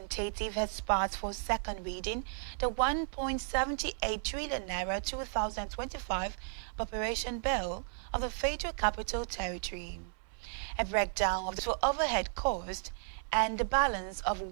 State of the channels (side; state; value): left; silent; 55 dB below the other